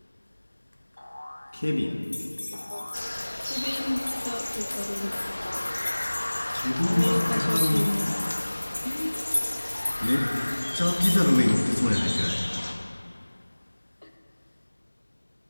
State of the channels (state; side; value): inverted; both; correlation -1.00